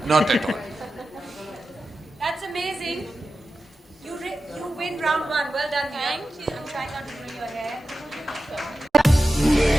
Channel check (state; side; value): normal; both; correlation 0.93